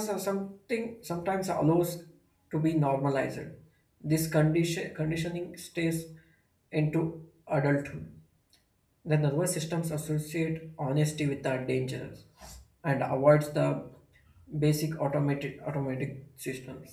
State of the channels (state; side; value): identical; both; correlation 1.00